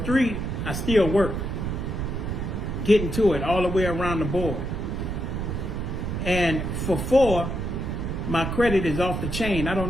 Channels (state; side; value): noise; right; rumble, 3 dB below the sound